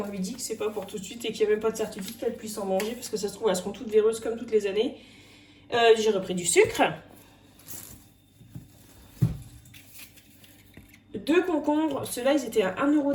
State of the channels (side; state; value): both; identical; correlation 1.00